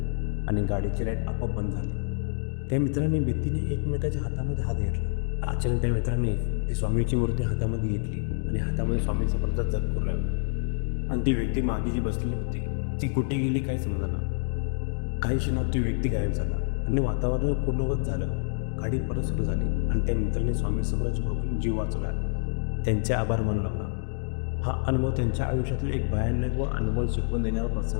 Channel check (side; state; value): right; silent; 60 dB below the other